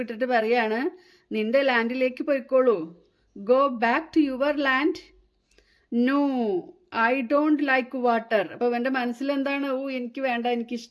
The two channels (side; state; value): both; identical; correlation 1.00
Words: വിട്ടിട്ട് പറയാണ്, നിന്റെ ലാൻഡിലേക്ക് പോയിക്കോളൂ. Go back to your land. No, I don't like water. അപ്പോൾ എൻ്റെ മനസ്സിൽ എന്താണ്? എനിക്ക് വേണ്ട, എനിക്ക്